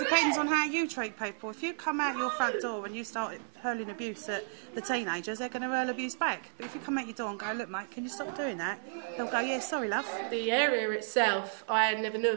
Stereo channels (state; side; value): silent; left; 56 dB below the other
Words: on how you treat people. If you come out your front door and you start hurling abuse at the teenagers, they're going to hurl abuse back. But if you come out your door and go, look mate, can you stop doing that? They'll go, yeah, sorry love. The area itself, I never knew